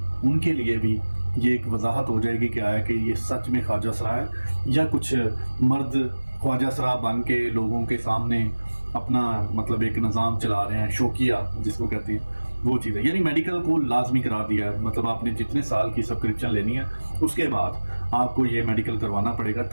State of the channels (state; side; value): inverted; both; correlation -1.00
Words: کے لیے بھی یہ ایک وضاحت ہو جائے گی کہ آیا کہ یہ سچ میں خواجہ سرا ہے یا کچھ مرد خواجہ سرا بن کے لوگوں کے سامنے اپنا مطلب ایک نظام چلا رہے ہیں, شوقیہ جس کو کہتے ہیں, وہ چیز ہے. یعنی میڈیکل کو لازمی قرار دیا ہے. مطلب آپ نے جتنے سال کی سبسکرپشن لینی ہے اس کے بعد آپ کو یہ میڈیکل کروانا پڑے گا,